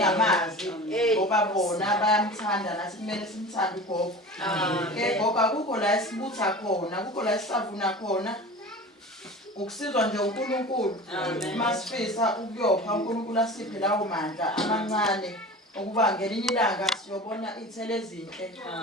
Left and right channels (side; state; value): both; normal; correlation 0.36